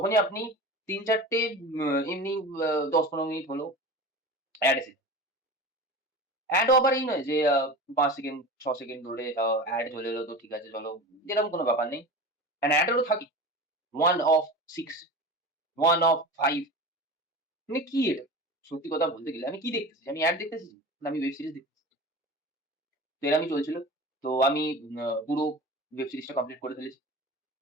আপনি ৩-৪ টে এমনি ১০-১৫ মিনিট হলো অ্যাড এসেছে। অ্যাডও আবার এই নয় যে ৫ সেকেন্ড ৬ সেকেন্ড ধরে অ্যাড চলে এলো তো ঠিক আছে চলো। এরকম কোনো ব্যাপার নেই। অ্যান্ড অ্যাডেরও থাকে 1 অফ 6, 1 অফ 5 মানে কি এটা? সত্যি কথা বলতে গেলে আমি কি দেখতেছি? আমি অ্যাড দেখতেছি না আমি ওয়েব সিরিজ দেখতেছি। তো এরমই চলছিল। তো আমি পুরো ওয়েব সিরিজটা কমপ্লিট করে ফেলেছি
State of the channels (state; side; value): normal; both; correlation 0.32